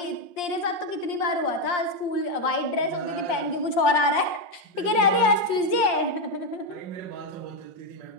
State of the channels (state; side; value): late; right; 5.7 ms